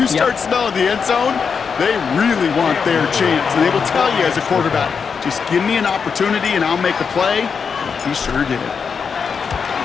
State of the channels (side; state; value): right; quieter; 6.0 dB